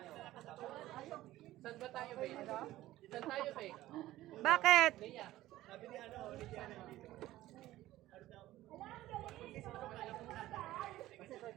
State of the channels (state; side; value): quieter; left; 15.6 dB